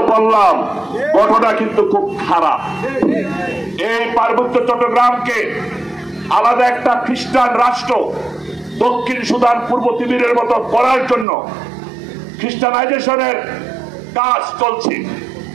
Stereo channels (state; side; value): drops out; left; at 11.2 s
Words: বললাম, ঘটনা কিন্তু খুব খারাপ। এই পার্বত্য চট্টগ্রামকে আলাদা একটা খ্রিস্টান রাষ্ট্র দক্ষিণ সুদান, পূর্ব তিমুরের মতো করার জন্য খ্রিস্টানাইজেশনের কাজ চলছে।